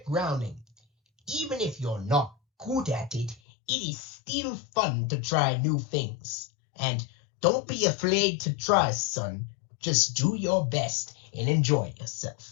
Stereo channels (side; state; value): right; drops out; at 3.4 s